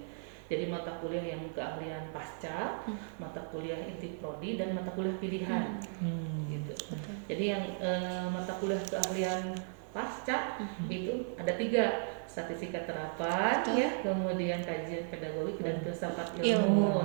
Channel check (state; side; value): silent; left; 54 dB below the other